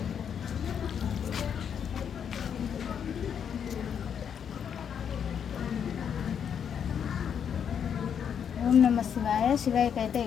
ఓం నమ శివాయ. శివయ్యకైతే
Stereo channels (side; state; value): right; quieter; 7.9 dB